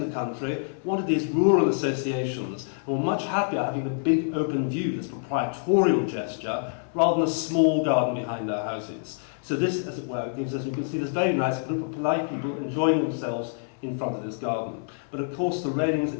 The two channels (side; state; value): right; silent; 60 dB below the other